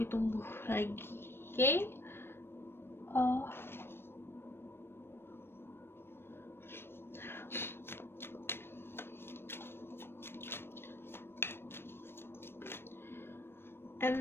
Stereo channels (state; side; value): late; right; 0.11 ms